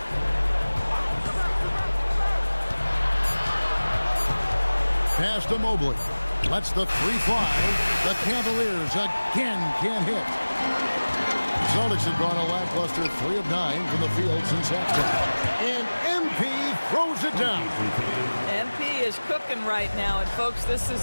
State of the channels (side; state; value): both; inverted; correlation -1.00